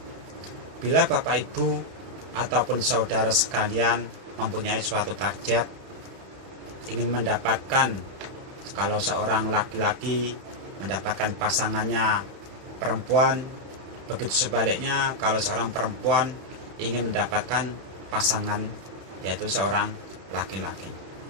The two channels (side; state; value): left; late; 31 ms